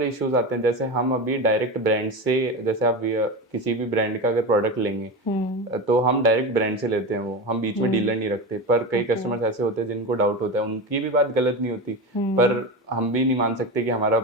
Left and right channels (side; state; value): both; normal; correlation 0.23